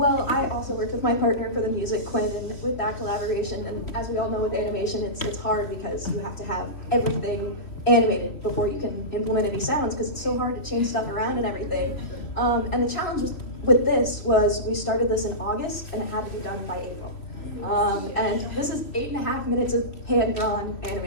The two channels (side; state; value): right; late; 3.2 ms